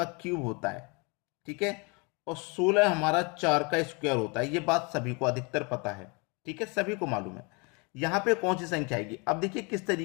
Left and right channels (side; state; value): right; quieter; 31.0 dB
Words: क्यूब होता है, ठीक है। और 16 हमारा 4 का स्क्वायर होता है। ये बात सभी को अधिकतर पता है, ठीक है, सभी को मालूम है। यहाँ पे कौन सी संख्या आएगी? अब देखिए किस